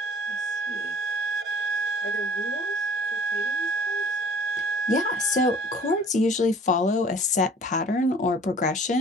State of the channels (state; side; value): normal; both; correlation 0.49